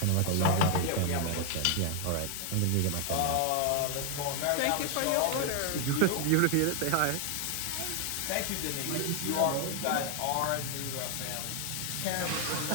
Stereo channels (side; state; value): both; different; correlation 0.00